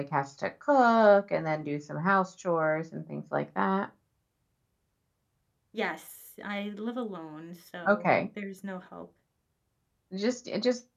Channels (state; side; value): identical; both; correlation 1.00